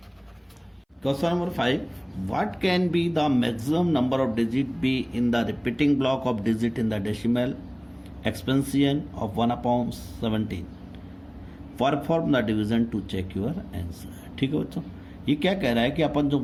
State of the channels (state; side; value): identical; both; correlation 1.00